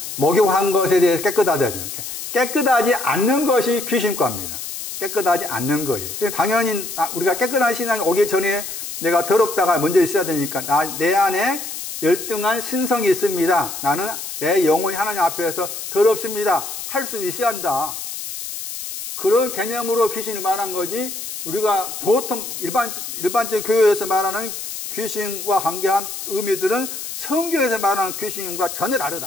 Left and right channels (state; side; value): noise; left; hiss, 8 dB below the sound